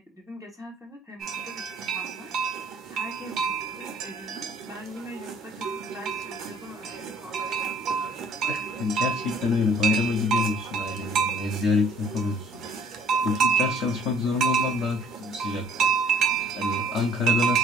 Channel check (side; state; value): both; normal; correlation 0.57